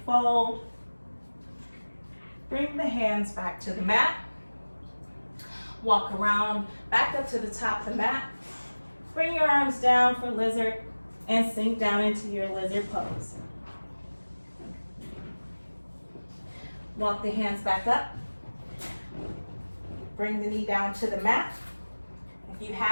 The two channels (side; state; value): both; inverted; correlation -1.00